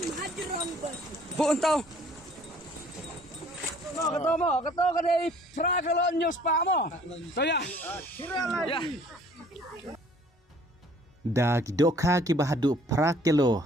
Bu entau. Keto kadai tra kalau news pa mo. To ya. Ya. Da kidoka ki bahadu prakelo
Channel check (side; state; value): both; normal; correlation 0.56